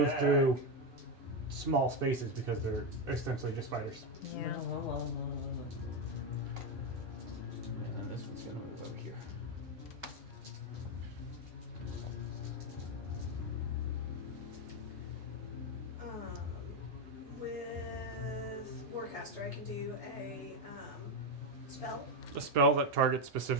through small spaces because they're essentially just spiders. Yeah. And then this one's gonna move over here. With Warcaster, I can do a Spell? A spell that targets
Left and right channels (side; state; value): both; normal; correlation 0.08